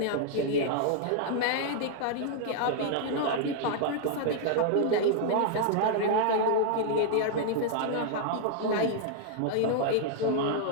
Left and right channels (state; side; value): different; both; correlation -0.01